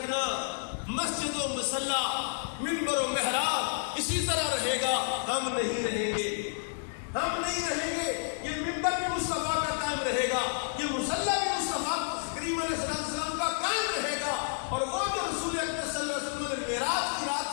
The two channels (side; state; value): right; silent; digital silence